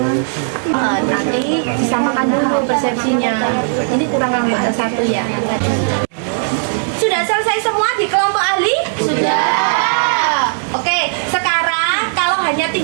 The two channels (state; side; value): silent; left; digital silence